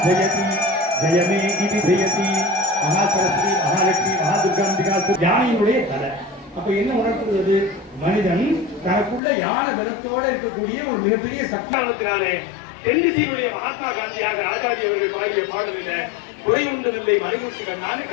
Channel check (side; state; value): right; drops out; at 9.2 s